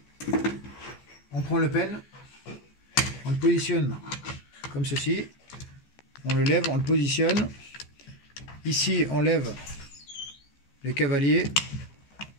On prend le pelle, on le positionne comme ceci, on le lève, on le positionne. Ici on lève le cavalier,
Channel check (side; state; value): right; late; 14 ms